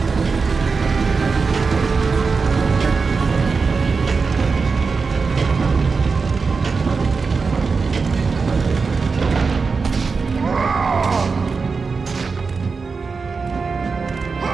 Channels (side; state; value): left; quieter; 4.8 dB